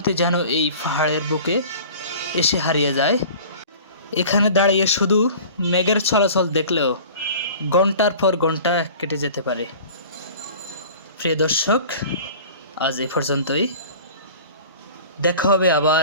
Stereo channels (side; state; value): both; inverted; correlation -0.42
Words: যেন এই পাহাড়ের বুকে এসে হারিয়ে যায়। এখানে দাঁড়িয়ে শুধু মেঘের চলাচল দেখলেও ঘন্টার পর ঘন্টা কেটে যেতে পারে। প্রিয় দর্শক, আজ এ পর্যন্তই। দেখা হবে